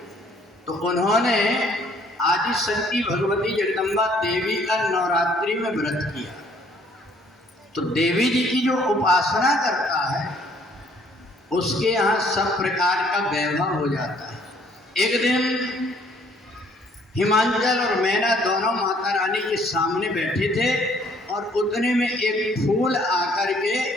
तो उन्होंने आदि शक्ति भगवती जगदम्बा देवी का नवरात्रि में व्रत किया। तो देवी जी की जो उपासना करता है उसके यहाँ सब प्रकार का वैभव हो जाता है। एक दिन हिमाचल और मैना दोनों माता रानी के सामने बैठे थे और उतने में एक फूल आकर के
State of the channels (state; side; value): normal; both; correlation 0.62